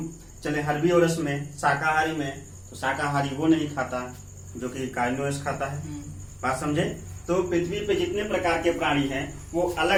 चले हर्बीओरस में, शाकाहारी में, तो शाकाहारी वो नहीं खाता जो कि कार्निवोरस खाता है। बात समझे? तो पृथ्वी पे जितने प्रकार के प्राणी हैं वो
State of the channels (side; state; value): both; identical; correlation 1.00